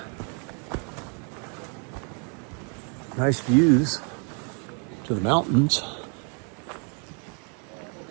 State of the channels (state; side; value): quieter; left; 39.1 dB